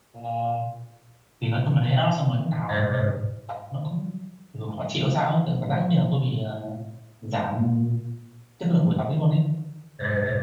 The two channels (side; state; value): both; identical; correlation 1.00